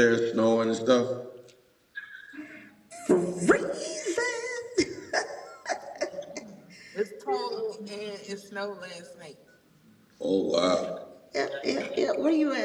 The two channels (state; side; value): identical; both; correlation 1.00